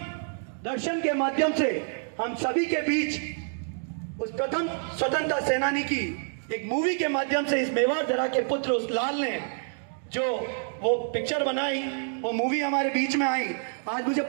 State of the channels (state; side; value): silent; left; digital silence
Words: दर्शन के माध्यम से हम सभी के बीच उस प्रथम स्वतंत्रता सेनानी की एक मूवी के माध्यम से इस मेवाड़ धरा के पुत्र उस लाल ने जो वो पिक्चर बनाई, वो मूवी हमारे बीच में आई। आज मुझे